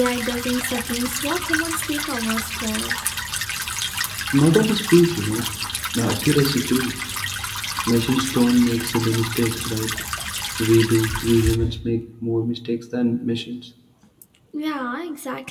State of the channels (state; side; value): identical; both; correlation 1.00